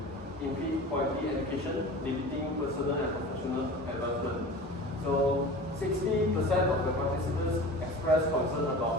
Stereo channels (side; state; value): both; normal; correlation 0.36